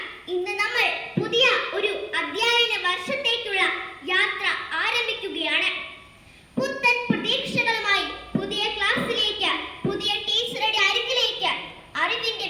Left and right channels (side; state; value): both; identical; correlation 1.00